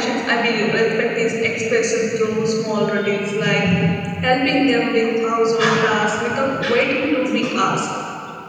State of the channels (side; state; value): both; identical; correlation 1.00